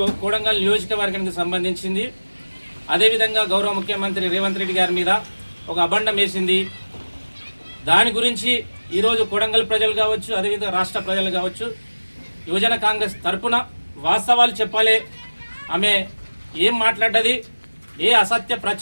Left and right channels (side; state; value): both; inverted; correlation -1.00